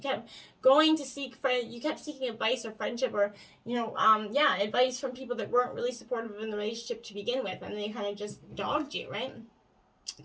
kept going to seek you kept seeking advice or friendship or, advice from people that weren't really supportive in the relationship to begin with. And they kind of just dogged you, right?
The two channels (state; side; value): identical; both; correlation 1.00